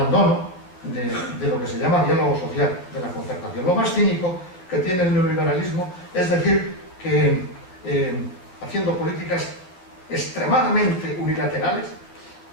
de lo que se llama diálogo social, de la concertación. Lo más cínico que tiene el neoliberalismo es decir que haciendo políticas extremadamente unilaterales,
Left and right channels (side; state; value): right; late; 11 ms